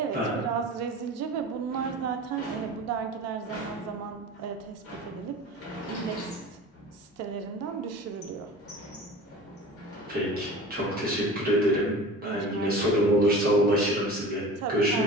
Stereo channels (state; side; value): normal; both; correlation 0.37